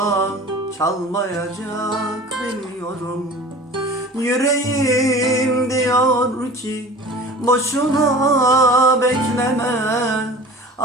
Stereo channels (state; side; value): normal; both; correlation 0.41